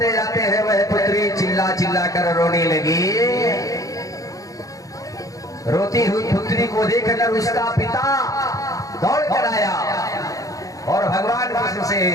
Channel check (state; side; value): late; right; 0.17 ms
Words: जाते हैं, वह पुत्री चिल्ला चिल्ला कर रोने लगी। रोती हुई पुत्री को देखकर उसका पिता दौड़ कर आया और भगवान कृष्ण से